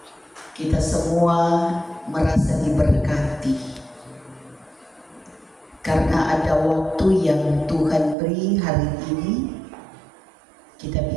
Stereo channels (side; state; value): left; drops out; at 8.2 s